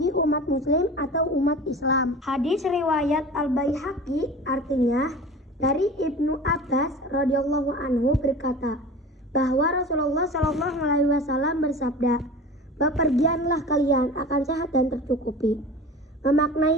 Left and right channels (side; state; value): both; normal; correlation 0.37